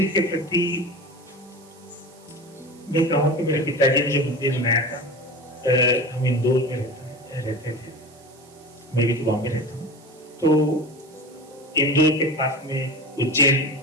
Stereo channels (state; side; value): noise; right; hiss, 26 dB below the sound